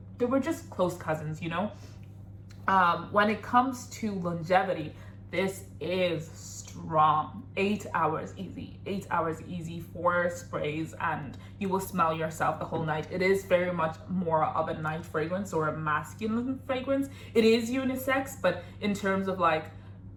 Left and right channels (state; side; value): identical; both; correlation 1.00